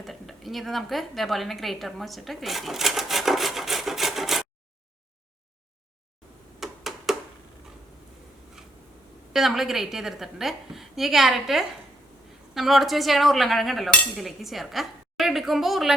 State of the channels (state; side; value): normal; both; correlation 0.74